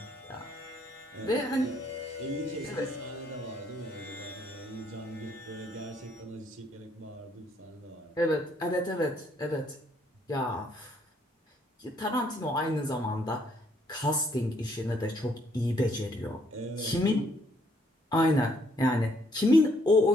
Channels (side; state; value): both; normal; correlation 0.68